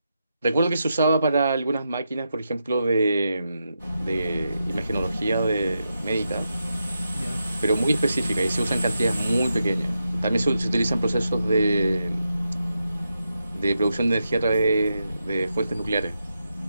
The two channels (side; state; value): both; inverted; correlation -0.86